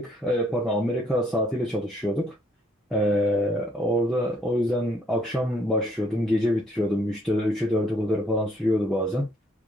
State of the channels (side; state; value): both; normal; correlation 0.66